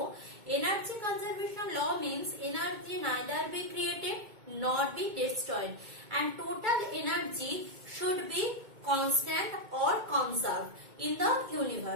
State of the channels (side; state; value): left; late; 2.2 ms